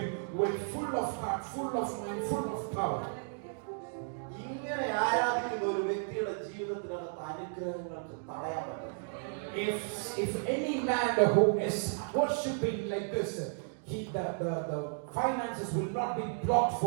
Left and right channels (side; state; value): left; silent; digital silence